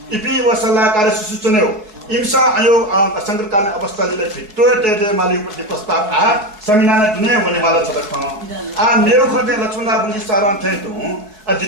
इपि व सल्लाहकार सुसुचने हो इम्सा आयोग संकटकालीन अवस्थाले भित्तो टेटे माली उपति प्रस्ताव आ समिनाले दुने भने माला छदख आ नेउ खते लक्ष्मणा बुझी सारान थे तु आ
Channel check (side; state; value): left; late; 4.7 ms